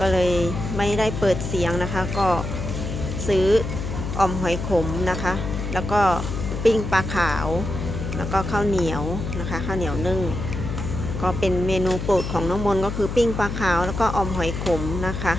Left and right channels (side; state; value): left; noise; hum, 5 dB below the sound